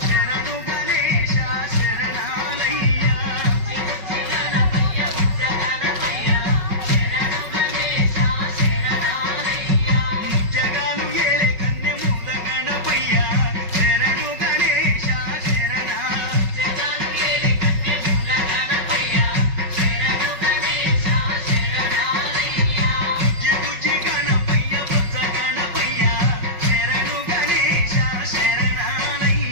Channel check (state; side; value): late; left; 5.4 ms